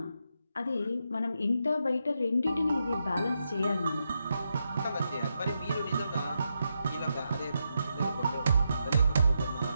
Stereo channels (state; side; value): inverted; both; correlation -0.84